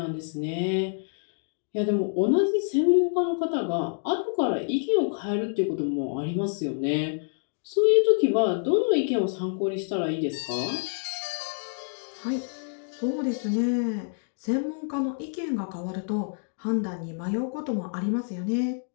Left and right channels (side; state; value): right; silent; digital silence